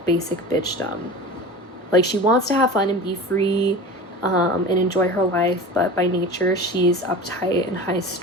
basic bitchdom. Like, she wants to have fun and be free, and enjoy her life, but by nature she's uptight and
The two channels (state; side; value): normal; both; correlation 0.33